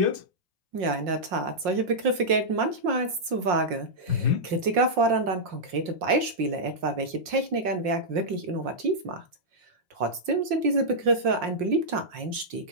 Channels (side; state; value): left; late; 5.6 ms